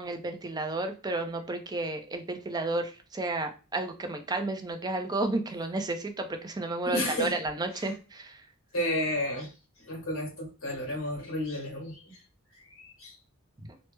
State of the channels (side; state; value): both; normal; correlation 0.26